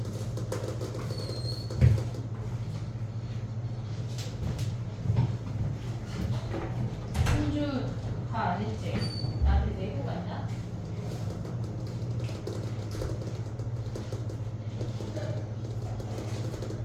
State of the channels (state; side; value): identical; both; correlation 1.00